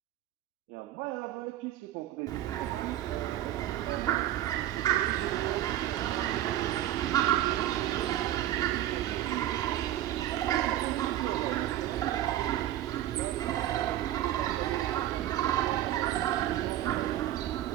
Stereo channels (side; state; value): left; quieter; 12.9 dB